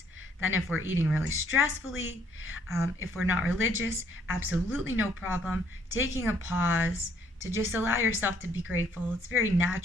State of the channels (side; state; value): both; normal; correlation 0.66